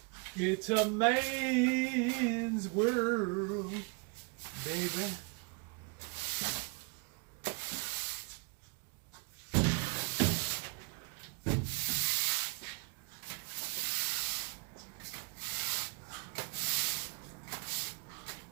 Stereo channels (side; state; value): left; quieter; 33.3 dB